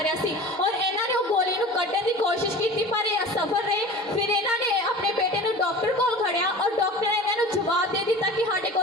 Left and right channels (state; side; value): normal; both; correlation 0.37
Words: ਰਿਹਾ ਸੀ ਔਰ ਇਹਨਾਂ ਨੇ ਉਹ ਗੋਲੀ ਨੂੰ ਕੱਢਣ ਦੀ ਕੋਸ਼ਿਸ਼ ਕੀਤੀ ਪਰ ਇਹ ਅਸਫਲ ਰਹੇ। ਫਿਰ ਇਹਨਾਂ ਨੇ ਆਪਣੇ ਬੇਟੇ ਨੂੰ ਡਾਕਟਰ ਕੋਲ ਖੜਿਆ ਔਰ ਡਾਕਟਰ ਨੇ ਇਹਨਾਂ ਨੂੰ ਜਵਾਬ ਦੇ ਦਿੱਤਾ ਕਿ ਸਾਡੇ